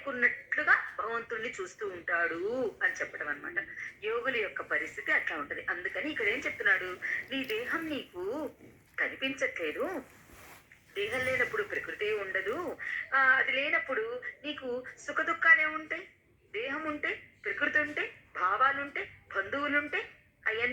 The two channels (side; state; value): both; identical; correlation 1.00